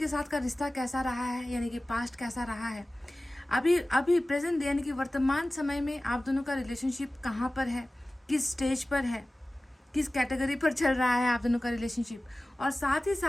साथ का रिश्ता कैसा रहा है, यानी कि पास्ट कैसा रहा है, अभी प्रेजेंट यानी कि वर्तमान समय में आप दोनों का रिलेशनशिप कहाँ पर है, किस स्टेज पर है, किस कैटेगरी पर चल रहा है आप दोनों का रिलेशनशिप, और साथ ही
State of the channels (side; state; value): both; normal; correlation 0.97